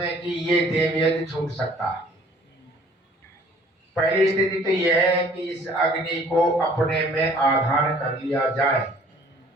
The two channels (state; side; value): normal; both; correlation 0.55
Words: कि ये देव यज्ञ छूट सकता है। पहली स्थिति तो यह है कि इस अग्नि को अपने में आधान कर लिया जाए।